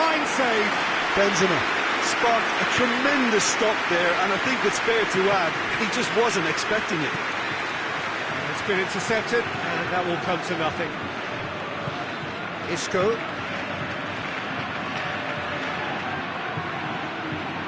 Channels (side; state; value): both; identical; correlation 1.00